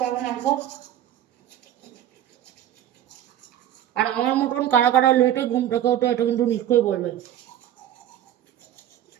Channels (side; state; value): left; quieter; 11.5 dB